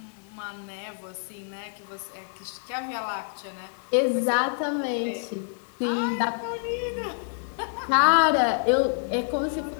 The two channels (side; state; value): right; silent; digital silence